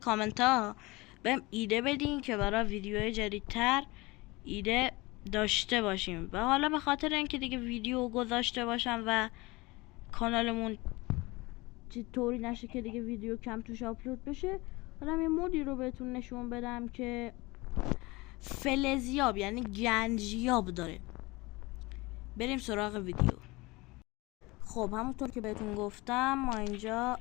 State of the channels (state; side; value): quieter; right; 22.9 dB